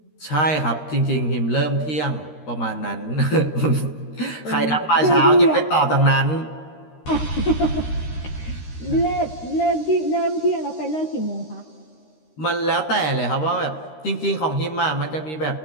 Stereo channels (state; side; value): late; right; 13 ms